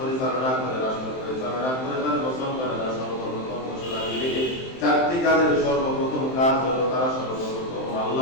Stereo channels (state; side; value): late; right; 23 ms